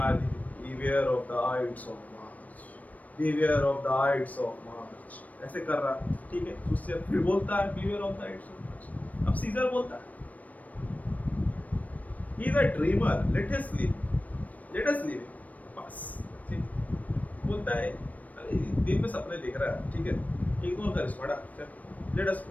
beware of the aides of March, beware of the aides of March, ऐसे कर रहा है, ठीक है। सूदसेयर फिर बोलता है, beware of the aides of March. अब सीजर बोलता है, he is a dreamer, let us live, बस, ठीक। बोलता है, अरे दिन में सपने देख रहा है, ठीक है, इग्नोर कर इसको, लेट अस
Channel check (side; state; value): right; late; 0.072 ms